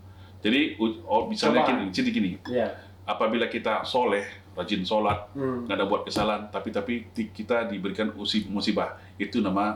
Jadi misalnya gini, Iya. apabila kita soleh, rajin sholat, Hmm. nggak ada buat kesalahan, tapi kita diberikan musibah, itu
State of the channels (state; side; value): identical; both; correlation 1.00